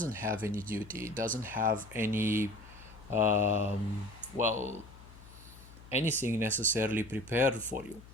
have any duty, it doesn't have any, well, anything necessarily prepared for you.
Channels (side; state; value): left; noise; hum, 19 dB below the sound